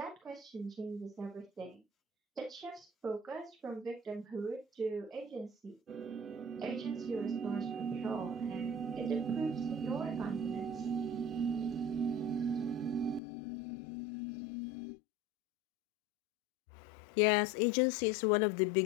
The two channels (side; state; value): right; drops out; at 13.2 s